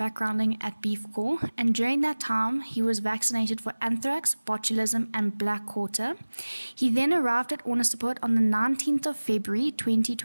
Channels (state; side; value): inverted; both; correlation -1.00